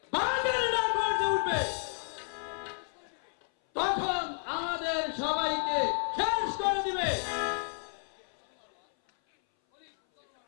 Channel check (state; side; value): silent; right; 57 dB below the other